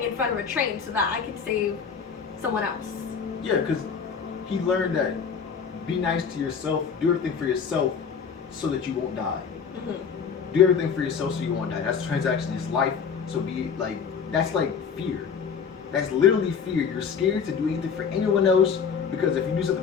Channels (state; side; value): quieter; right; 6.4 dB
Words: in front of a train so that I can save someone else. Yeah, because he learned that be nice to yourself, do everything for yourself so that you won't die. Mm-hmm. Do everything for yourself so you won't die. That's a transaction, it's life. So be like, that's like fear. That's literally fear. You're scared to do anything for anyone else because if you do